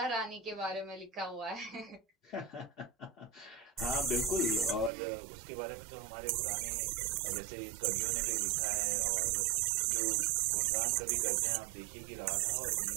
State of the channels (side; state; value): left; drops out; at 4.9 s